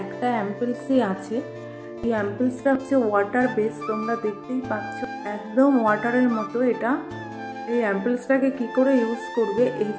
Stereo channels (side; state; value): both; identical; correlation 1.00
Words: একটা অ্যাম্পুলসই আছে। এই অ্যাম্পুলসটা হচ্ছে ওয়াটার বেস, তোমরা দেখতেই পাচ্ছ একদম ওয়াটারের মতো। এটা এই অ্যাম্পলসটাকে কী করে ইউজ করবে, এই